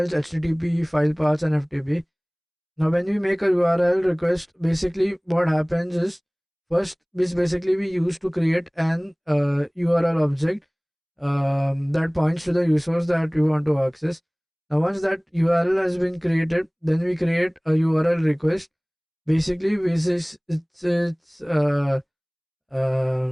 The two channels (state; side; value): identical; both; correlation 1.00